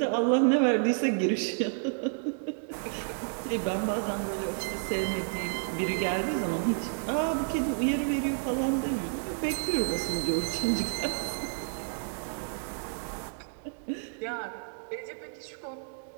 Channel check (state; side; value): silent; left; digital silence